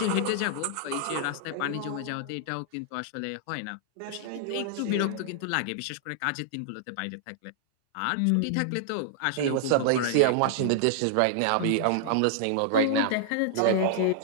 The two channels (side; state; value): both; different; correlation -0.01